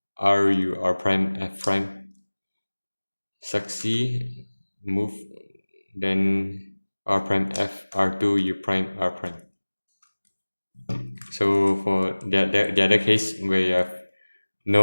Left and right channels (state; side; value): inverted; both; correlation -1.00